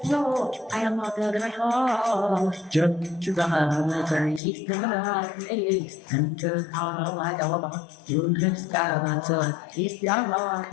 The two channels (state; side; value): drops out; right; at 4.4 s